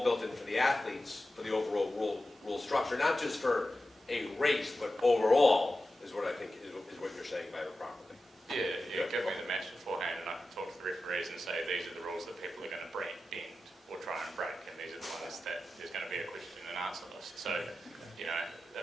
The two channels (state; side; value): normal; both; correlation 0.93